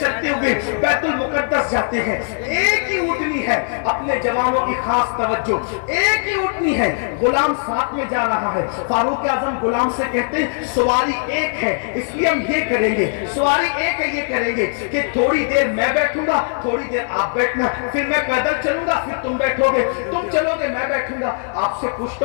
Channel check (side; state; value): right; silent; digital silence